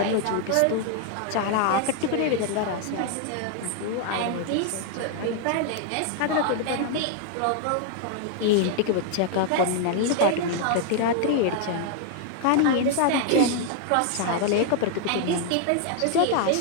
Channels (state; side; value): different; both; correlation 0.00